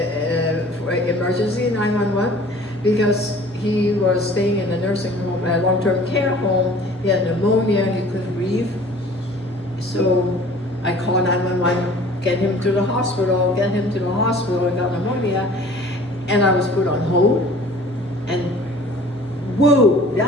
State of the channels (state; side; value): normal; both; correlation 0.48